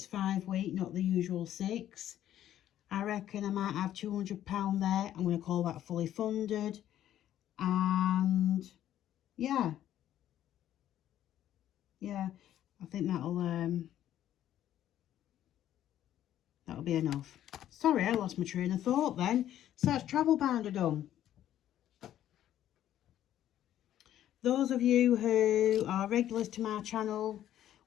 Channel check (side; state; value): right; quieter; 11.8 dB